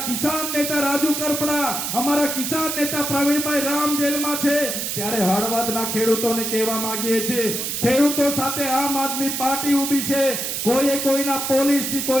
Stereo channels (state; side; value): noise; right; hiss, 2 dB below the sound